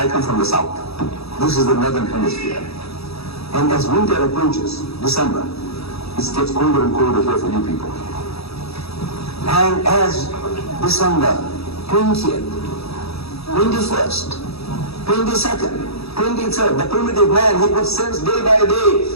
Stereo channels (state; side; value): late; right; 0.78 ms